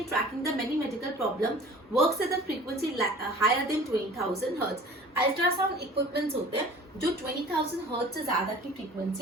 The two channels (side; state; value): both; normal; correlation 0.45